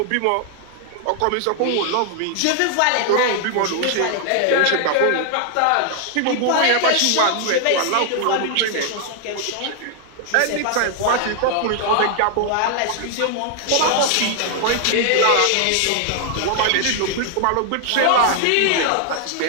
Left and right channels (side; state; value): both; different; correlation 0.00